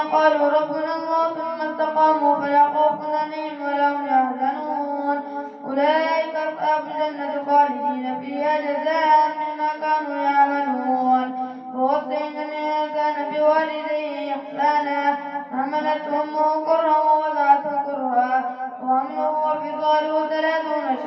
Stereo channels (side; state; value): both; identical; correlation 1.00